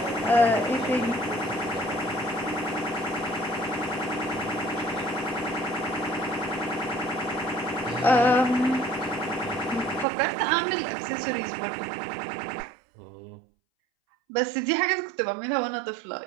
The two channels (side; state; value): left; drops out; at 10.1 s